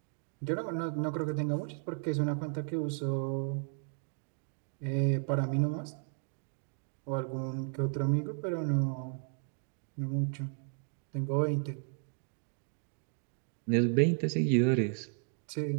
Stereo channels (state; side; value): silent; left; 55 dB below the other